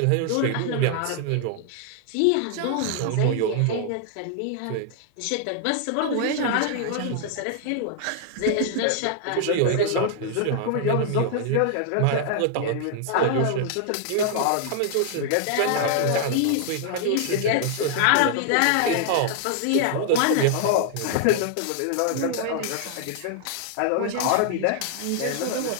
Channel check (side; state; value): both; different; correlation 0.00